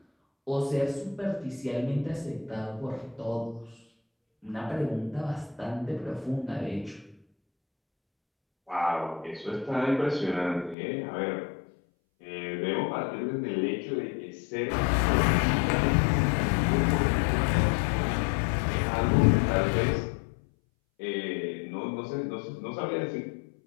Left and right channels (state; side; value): drops out; right; at 10.8 s